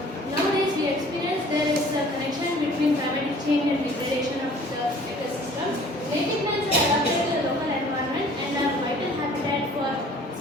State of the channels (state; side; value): normal; both; correlation 0.51